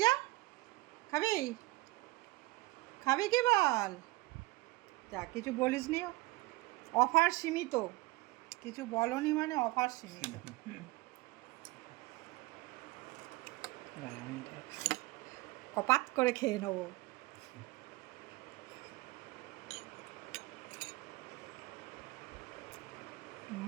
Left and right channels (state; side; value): quieter; left; 21.2 dB